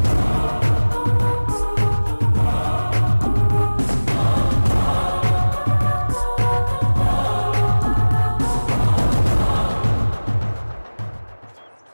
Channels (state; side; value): inverted; both; correlation -1.00